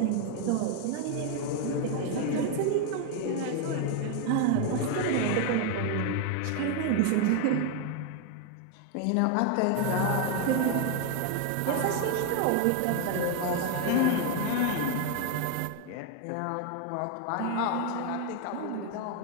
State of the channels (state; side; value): different; both; correlation 0.01